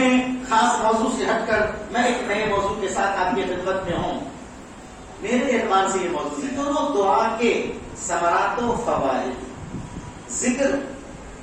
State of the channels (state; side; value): identical; both; correlation 1.00